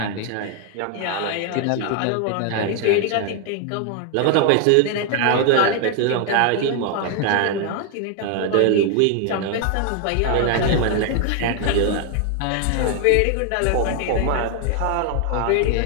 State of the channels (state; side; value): different; both; correlation 0.00